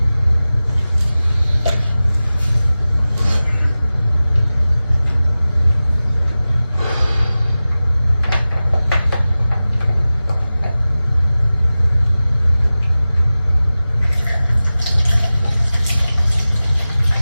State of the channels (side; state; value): both; inverted; correlation -0.96